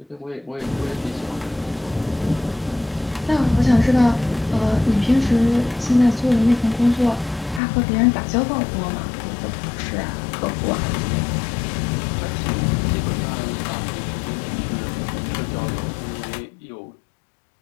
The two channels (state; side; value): drops out; right; at 7.6 s